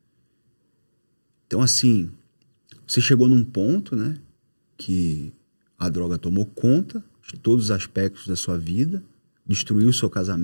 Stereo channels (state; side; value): inverted; both; correlation -1.00